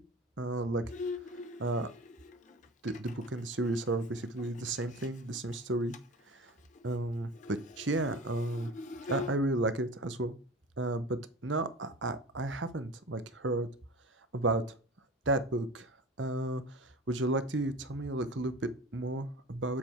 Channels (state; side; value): normal; both; correlation 0.36